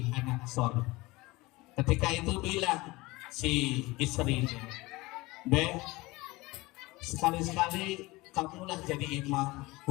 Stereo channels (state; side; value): quieter; right; 21.6 dB